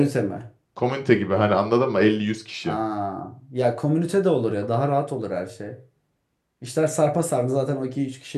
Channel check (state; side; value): identical; both; correlation 1.00